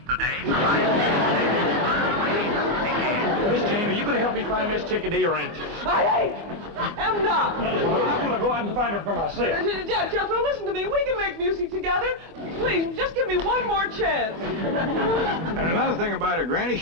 today? Miss Jane, are you going to help me find Miss Chickadee or ain't you? I am not. Well, I'm going to go out and find her for myself. Jethro, listen to me. We can make music together. Please, just give me one more chance. And another thing about her, Granny,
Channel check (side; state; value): left; late; 24 ms